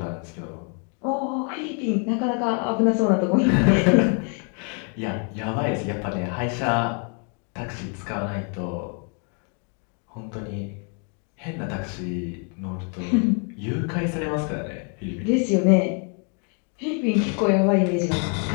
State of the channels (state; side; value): quieter; right; 38.5 dB